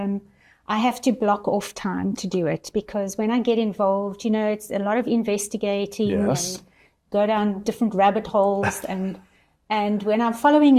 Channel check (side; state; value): both; identical; correlation 1.00